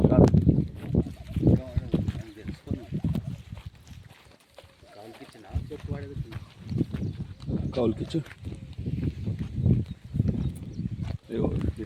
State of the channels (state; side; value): identical; both; correlation 1.00